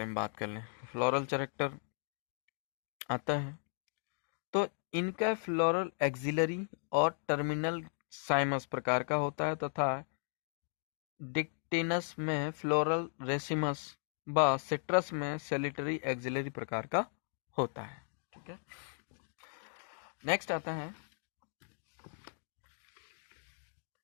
में बात कर लें। फ्लोरल कैरेक्टर आता है तो इनका फ्लोरल एक्सिलरी और टर्मिनल साइमस प्रकार का होता है, तथा डिक्टेनस में फ्लोरल रेसिमस व सिट्रस में सैलिटरी एक्सिलरी प्रकार का होता है। ठीक है, नेक्स्ट आता है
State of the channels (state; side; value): silent; right; digital silence